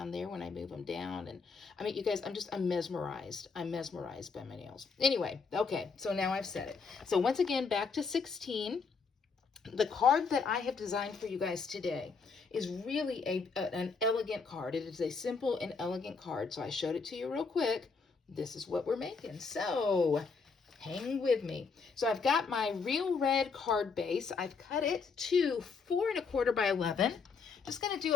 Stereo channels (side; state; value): right; quieter; 5.0 dB